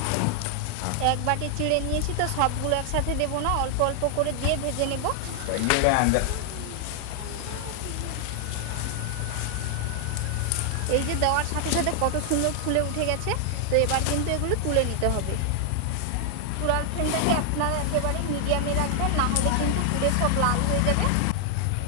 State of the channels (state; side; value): different; both; correlation 0.00